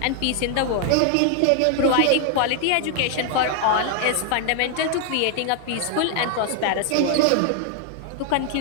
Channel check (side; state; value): both; different; correlation 0.00